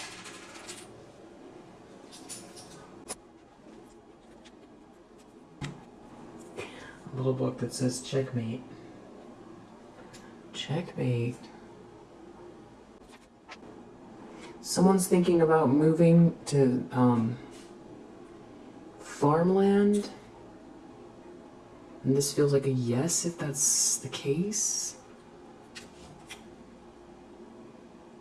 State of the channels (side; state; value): both; identical; correlation 1.00